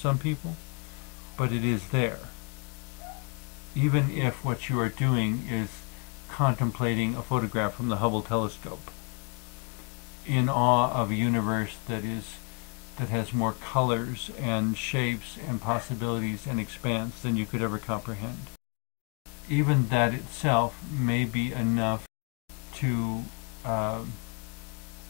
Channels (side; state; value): right; quieter; 33.7 dB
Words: people, but it is there. Even if what you are doing is contemplating a photograph from the Hubble telescope, in awe of a universe that has more colors and shapes and possibilities and expanse than you could ever comprehend. Even that itself may be enough to